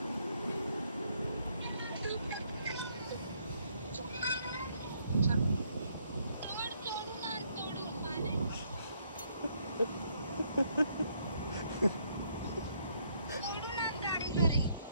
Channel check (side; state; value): both; inverted; correlation -0.70